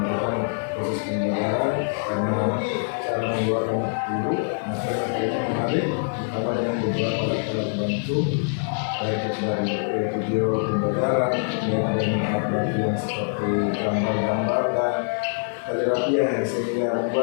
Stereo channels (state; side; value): silent; right; digital silence